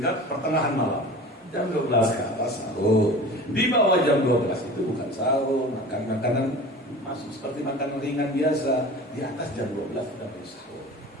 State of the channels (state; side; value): normal; both; correlation 0.38